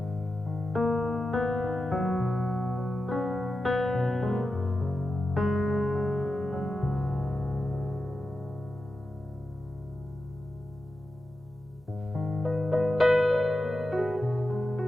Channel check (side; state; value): both; normal; correlation 0.91